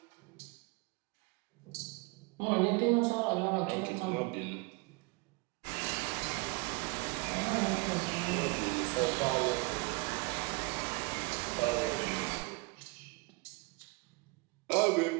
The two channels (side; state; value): left; quieter; 27.8 dB